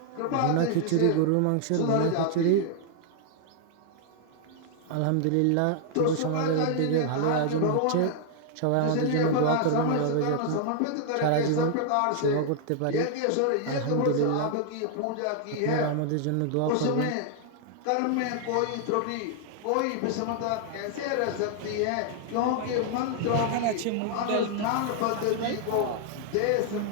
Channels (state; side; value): different; both; correlation 0.00